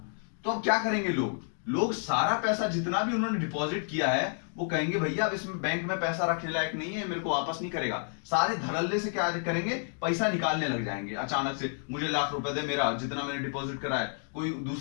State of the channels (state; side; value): silent; right; 58 dB below the other